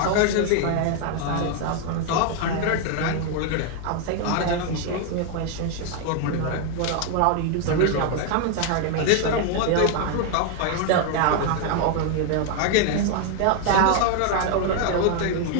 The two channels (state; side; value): different; both; correlation 0.01